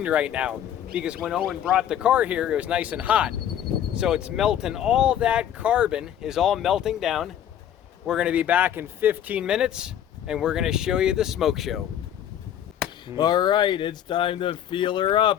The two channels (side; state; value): right; quieter; 10.3 dB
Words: right now, because when Owen brought the car here, it was nice and hot. So it's melting, all that carbon is all melting down. We're gonna be back in 15 minutes, and we're gonna show you the smoke show. All right, it's time to feel her